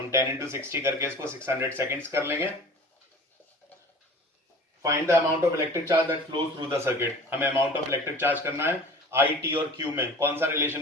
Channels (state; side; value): normal; both; correlation 0.42